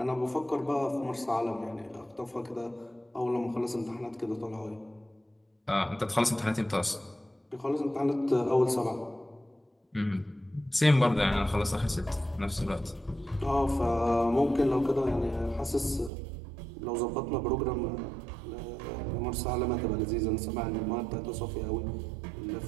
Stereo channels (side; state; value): left; drops out; at 16.1 s